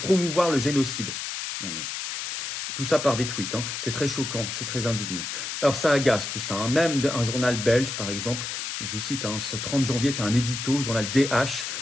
le génocide. Non mais, tout ça par des tweets, c'est très choquant, c'est très indigne. Alors ça agace tout ça, même un journal belge par exemple, je vous cite, ce 30 janvier fait un édito, journal DH,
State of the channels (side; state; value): left; noise; hiss, 5 dB below the sound